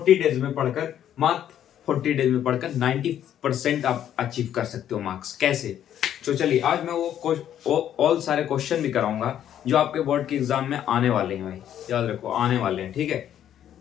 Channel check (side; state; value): right; quieter; 10.5 dB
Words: डेज में पढ़कर मात्र 40 डेज में पढ़कर 90% आप अचीव कर सकते हो मार्क्स। कैसे? तो चलिए, आज मैं वो ऑल सारे क्वेश्चन भी कराऊंगा जो आपके बोर्ड के एग्जाम में आने वाले हैं। भाई याद रखो, आने वाले हैं, ठीक है।